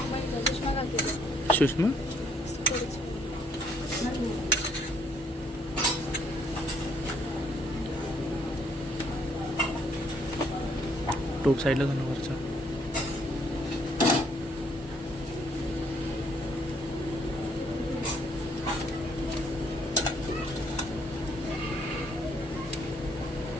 सुषमा टोप साईडला जाणं वरचा.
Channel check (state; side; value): normal; both; correlation 0.67